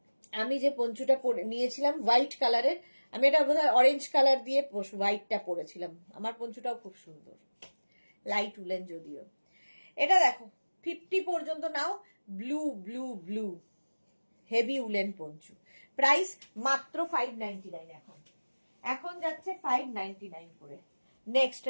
আমি যে পঞ্চুটা নিয়েছিলাম হোয়াইট কালারের, আমি এটা বোধহয় অরেঞ্জ কালার দিয়ে হোয়াইটটা পরেছিলাম। আমার পঞ্চুটাও খুব সুন্দর, লাইট উলেন যদিও। এটা দেখো 50 পর্যন্ত নাও। Blue blue blue heavy woollen poncho. Price মাত্র 599। এখন যাচ্ছে 599 করে। নেক্সট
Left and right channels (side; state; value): both; inverted; correlation -1.00